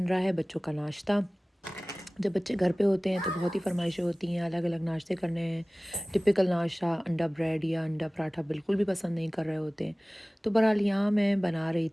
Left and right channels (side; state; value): both; normal; correlation 0.98